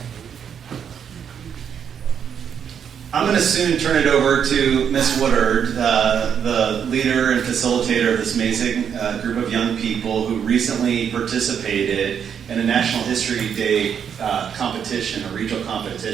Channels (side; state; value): left; quieter; 7.9 dB